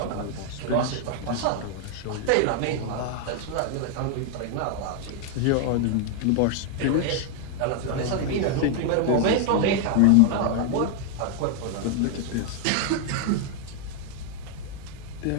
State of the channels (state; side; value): different; both; correlation 0.00